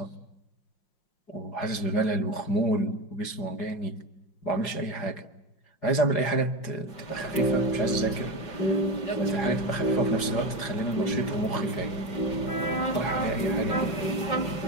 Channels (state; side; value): late; right; 5.5 ms